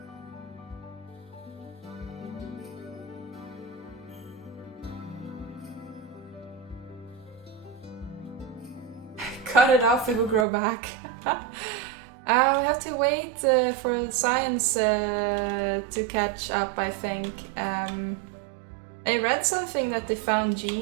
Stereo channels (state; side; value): drops out; left; at 10.5 s